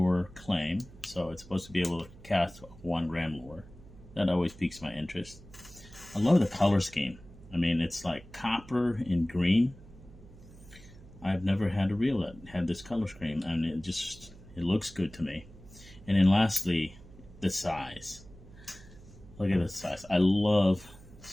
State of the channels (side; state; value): right; noise; hum, 20 dB below the sound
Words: claim, so it's supposed to be able to cast a 1 gram lure. That always piques my interest. I love the color scheme. I mean, it's like copper and green. I've never had a reel that had this color scheme, and it looks good to me. And then lastly, the size. Look at the size. I love